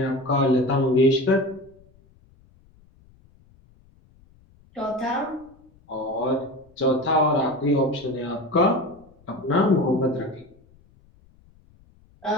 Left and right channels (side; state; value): left; noise; rumble, 29 dB below the sound